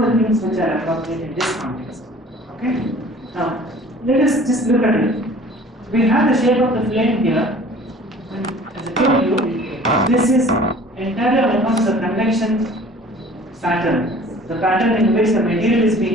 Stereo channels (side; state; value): both; normal; correlation 0.48